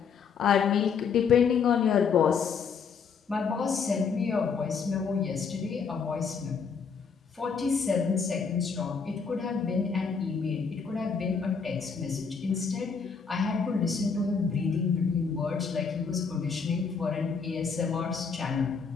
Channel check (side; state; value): right; quieter; 5.8 dB